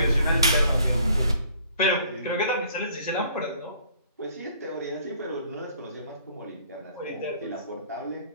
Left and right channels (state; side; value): inverted; both; correlation -0.58